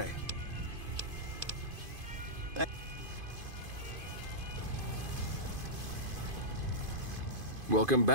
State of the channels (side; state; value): left; late; 2.5 ms